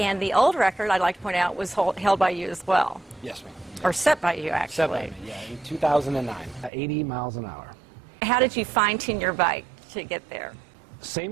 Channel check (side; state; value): left; drops out; at 6.7 s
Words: the old record, I'd like to point out, was held by you as well. Yes, ma'am. Or set by you, actually. Set by me, yeah, in 2009. 80 miles an hour. How did you fine-tune your bike to get there?